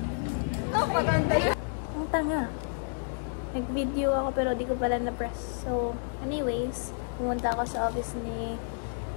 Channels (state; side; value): silent; right; 58 dB below the other